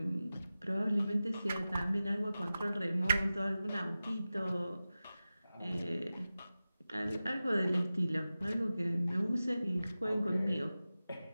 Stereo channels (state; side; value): inverted; both; correlation -0.95